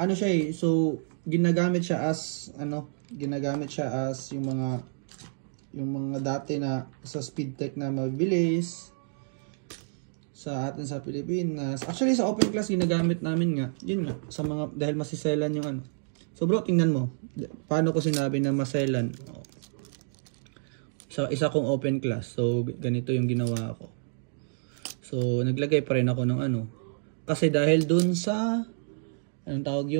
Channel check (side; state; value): left; silent; digital silence